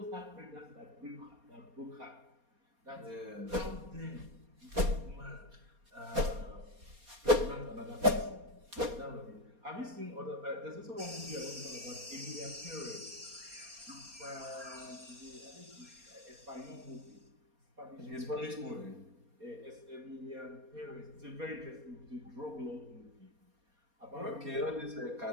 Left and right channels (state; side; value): late; left; 4.3 ms